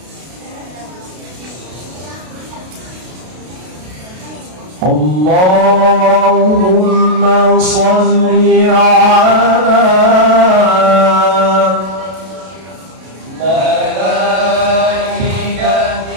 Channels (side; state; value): left; late; 32 ms